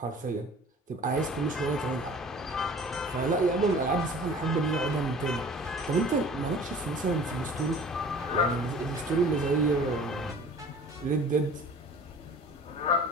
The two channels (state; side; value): normal; both; correlation 0.45